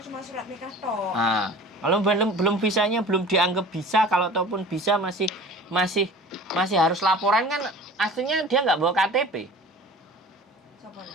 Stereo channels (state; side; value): normal; both; correlation 0.42